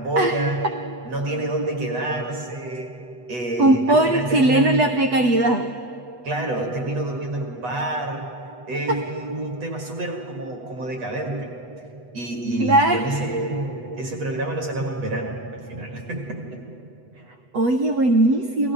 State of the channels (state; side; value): late; left; 8.1 ms